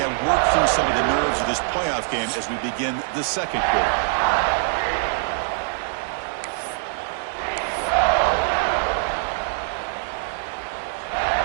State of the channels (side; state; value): left; silent; 63 dB below the other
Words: worked through some of the nerves of this playoff game as we begin the second quarter.